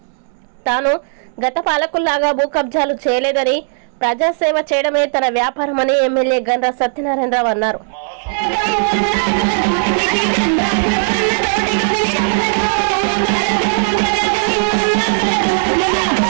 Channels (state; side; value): silent; left; digital silence